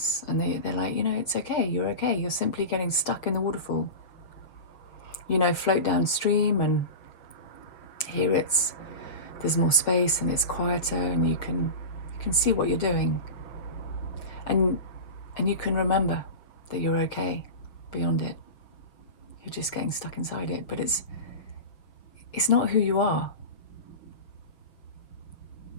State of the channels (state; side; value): late; right; 6.4 ms